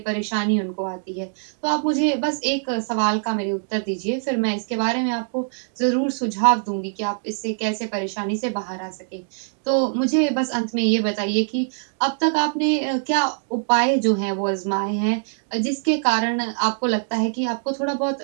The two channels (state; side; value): silent; left; digital silence